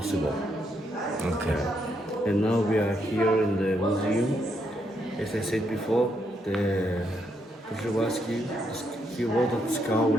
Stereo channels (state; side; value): normal; both; correlation 0.77